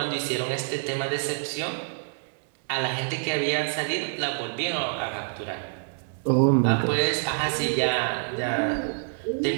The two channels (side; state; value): left; silent; digital silence